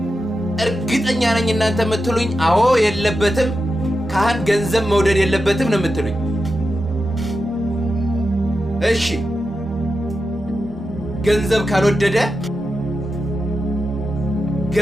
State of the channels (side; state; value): both; normal; correlation 0.90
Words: እርግጠኛ ነኝ እናንተ የምትሉኝ አዎ የለበትም፣ ካህን ገንዘብ መውደድ የለበትም ነው የምትሉኝ። እሺ ገንዘብ